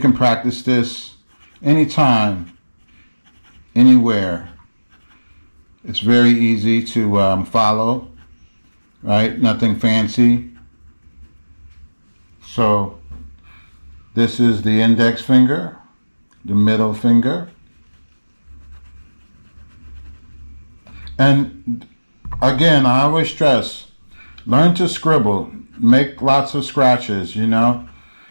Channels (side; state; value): both; inverted; correlation -1.00